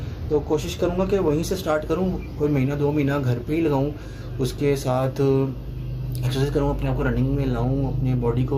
तो कोशिश करूँगा कि वहीं से स्टार्ट करूँ, कोई महीना 2 महीना घर पे ही लगाऊँ, उसके साथ एक्सरसाइज करूँ, अपने आप को रनिंग में लाऊँ, अपनी बॉडी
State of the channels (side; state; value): both; identical; correlation 1.00